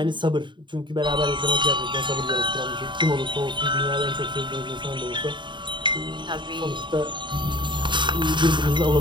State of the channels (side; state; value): left; late; 0.23 ms